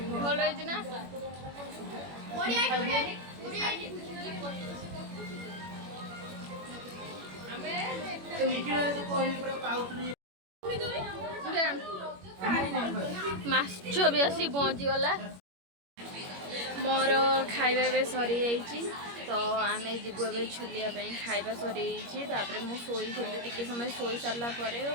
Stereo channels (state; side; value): late; left; 21 ms